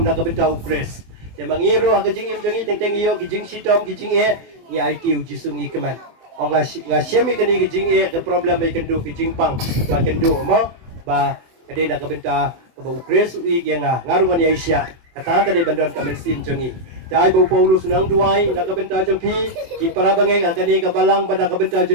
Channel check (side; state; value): left; late; 24 ms